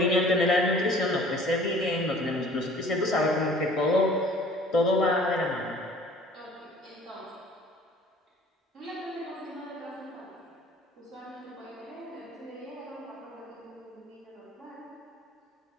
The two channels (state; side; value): normal; both; correlation 0.50